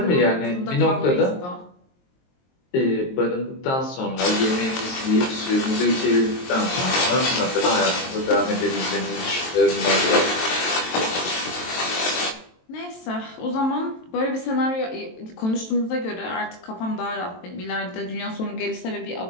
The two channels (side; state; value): right; late; 23 ms